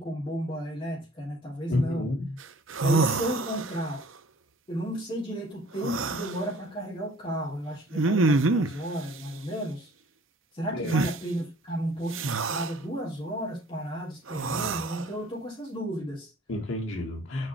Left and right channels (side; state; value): both; normal; correlation 0.52